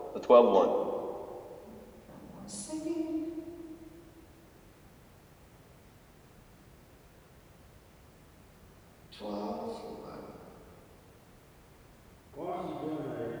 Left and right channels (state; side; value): identical; both; correlation 1.00